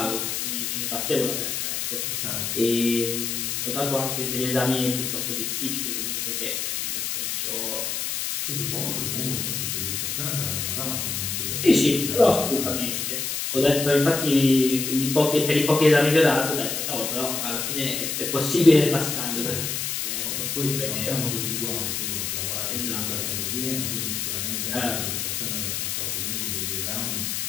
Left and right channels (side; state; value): left; noise; hiss, 2 dB below the sound